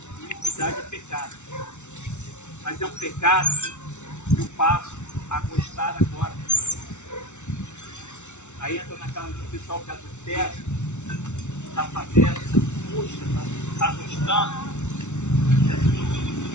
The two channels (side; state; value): right; late; 0.83 ms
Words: Iniquidade é pecado. Mas é um pecado que eu passo a gostar agora. Aí entra naquela que o pessoal que adultera, está fazendo, puxa, está gostando.